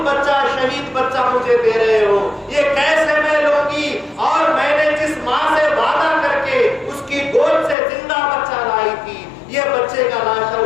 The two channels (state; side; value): drops out; right; at 7.8 s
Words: بچہ, شہید بچہ مجھے دے رہے ہو, یہ کیسے میں لوں گی؟ اور میں نے جس ماں سے وعدہ کر کے اس کی گود سے زندہ بچہ لائی تھی, یہ بچے کا لاشا